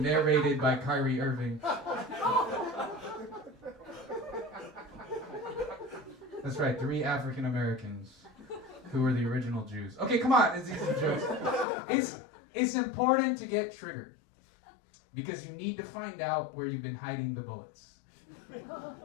by Kyrie Irving. That's right, 3 African Americans who were the original Jews. Okay, come on, it's easy jokes. It's important to get triggered because you need to find out where you've been hiding the bullets.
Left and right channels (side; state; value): right; drops out; at 11.7 s